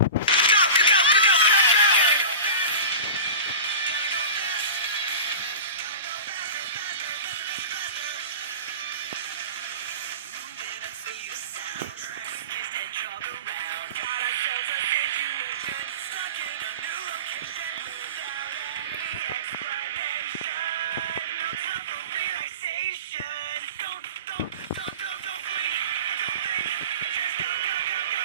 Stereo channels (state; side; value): inverted; both; correlation -0.32